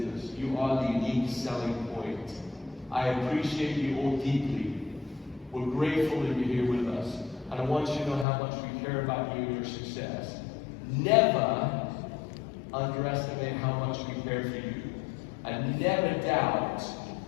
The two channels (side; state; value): right; drops out; at 8.2 s